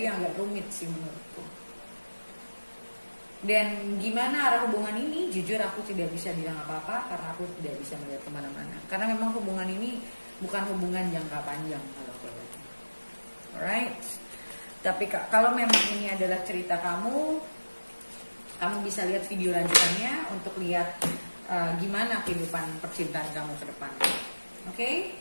yang agak rumit sih menurutku. Dan gimana arah hubungan ini, jujur aku tidak bisa bilang apa-apa karena aku tidak bisa melihat kemana-mana. Karena memang hubungan ini bukan hubungan jangka panjang kalau aku lihat. Alright. Tapi kalau memang ini adalah cerita kamu bisa lihat video lanjutannya untuk lihat gimana kehidupan percintaan kamu ke depan. Oke?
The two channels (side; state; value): both; inverted; correlation -1.00